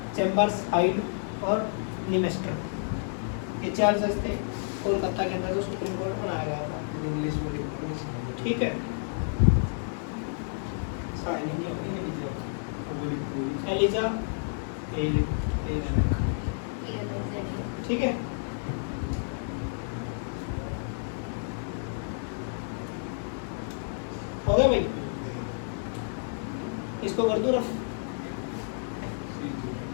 चैम्बर्स, हाइड और ली मास्टर, ये 4 जज थे कोलकाता के अंदर जो सुप्रीम कोर्ट बनाया गया था। इंग्लिश में। ठीक है, एलिजा, ठीक है। हो गया भाई, इसको कर दूं रफ।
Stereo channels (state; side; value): silent; right; 58 dB below the other